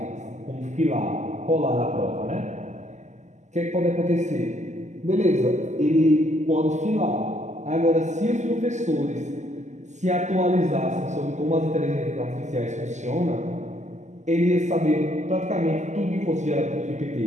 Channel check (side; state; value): left; late; 0.34 ms